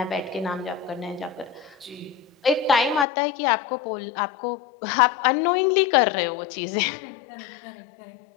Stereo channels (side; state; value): right; drops out; at 3.1 s